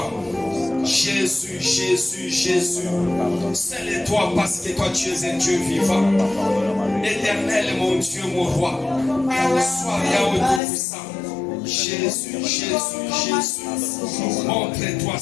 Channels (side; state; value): right; drops out; at 10.6 s